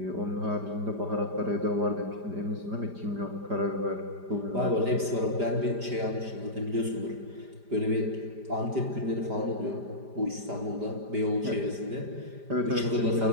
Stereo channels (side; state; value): left; late; 5.0 ms